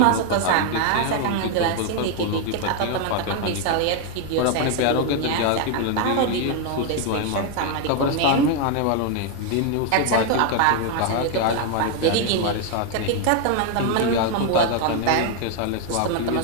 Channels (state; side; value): different; both; correlation 0.00